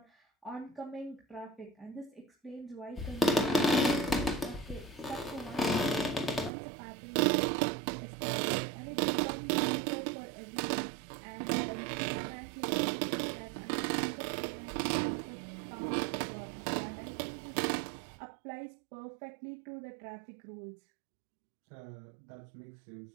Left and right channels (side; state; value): left; drops out; at 6.5 s